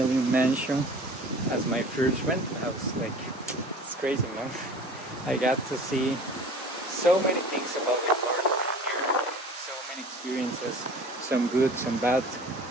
mansion as my first rental house. Like, it's crazy, man. I got to see so many things about the world here, so many experiences, some good, some bad,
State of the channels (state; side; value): normal; both; correlation 0.43